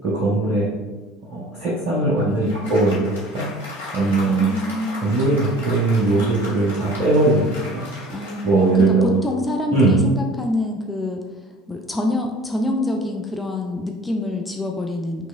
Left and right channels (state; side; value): normal; both; correlation 0.47